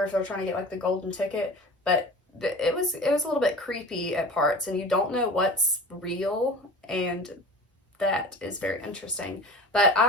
if they're trying to get like the golden ticket, but it was a little bit creepy at parts, and you don't know what's real, and that is very interesting. But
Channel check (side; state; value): both; normal; correlation 0.37